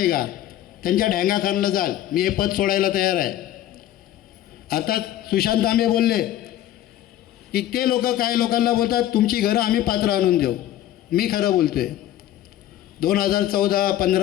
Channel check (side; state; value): right; quieter; 12.9 dB